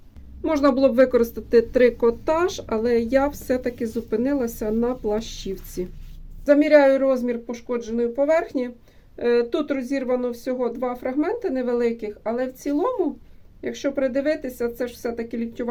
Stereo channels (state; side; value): identical; both; correlation 1.00